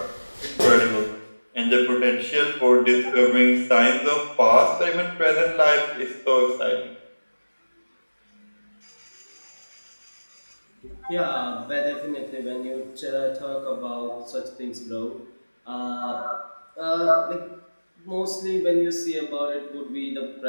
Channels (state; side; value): inverted; both; correlation -1.00